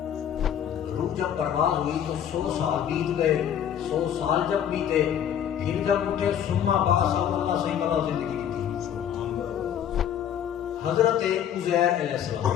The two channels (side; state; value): right; quieter; 9.5 dB